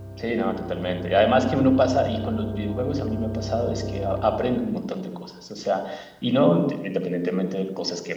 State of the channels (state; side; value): identical; both; correlation 1.00